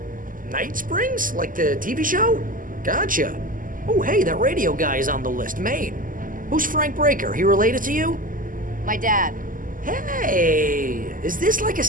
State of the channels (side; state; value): left; late; 0.40 ms